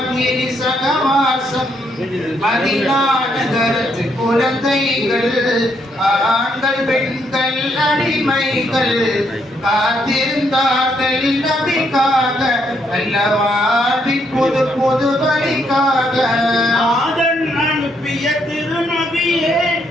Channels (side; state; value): both; normal; correlation 0.74